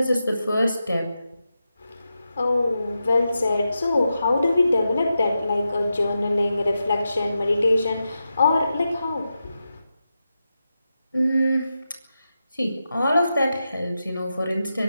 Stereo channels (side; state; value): both; inverted; correlation -0.89